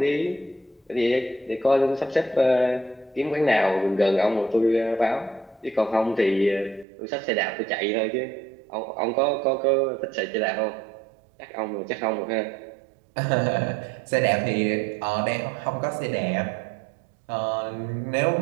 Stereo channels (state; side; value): drops out; left; at 6.9 s